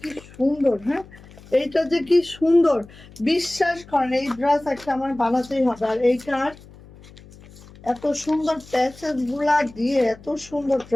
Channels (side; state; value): left; noise; hum, 21 dB below the sound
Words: কি সুন্দর, হ্যাঁ, এইটা যে কি সুন্দর, বিশ্বাস করেন এই ড্রেস একটা আমার বানাতেই হবে। আর এইটার এত সুন্দর প্যাচেস গুলা দিয়ে এত সুন্দর